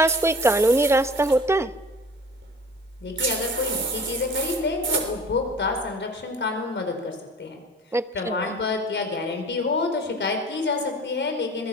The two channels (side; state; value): both; normal; correlation 0.43